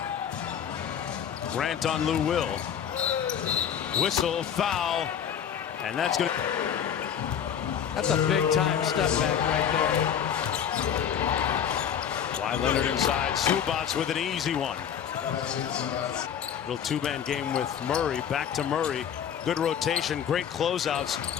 Grant on Lou Will. Whistle, foul, and that's going to... That's a big-time step back right there. Kawhi Leonard inside. Zubac with an easy one. Little two-man game with Murray. Back to Murray. Good rotation, great closeouts.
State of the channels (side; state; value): right; quieter; 8.5 dB